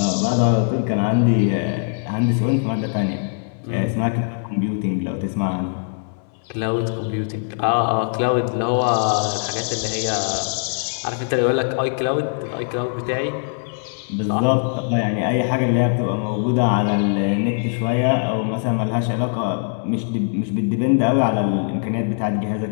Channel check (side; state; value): right; silent; 63 dB below the other